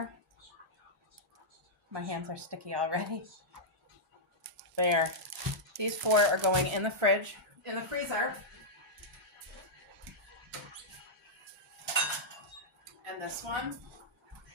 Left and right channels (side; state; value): both; normal; correlation -0.08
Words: My hands are sticky already. There. These 4 are going in the fridge, in the freezer. And this one,